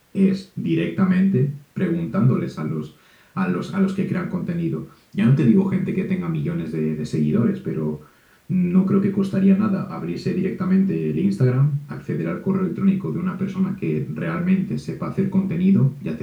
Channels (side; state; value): both; identical; correlation 1.00